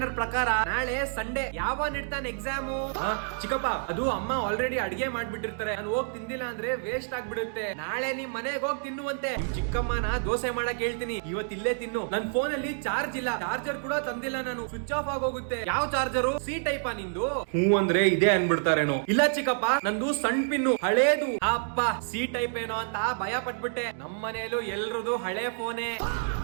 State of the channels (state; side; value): silent; left; digital silence